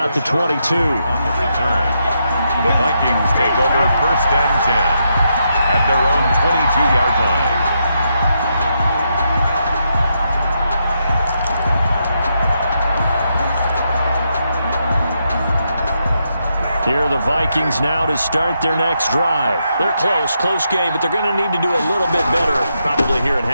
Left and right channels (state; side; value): inverted; both; correlation -0.81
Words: the 22. On the return, the Vikings take over first and 10 at their own 22-yard line. Here are the Vikings now to start their next drive. They're close game, but they're going to need to do a little bit better probably here in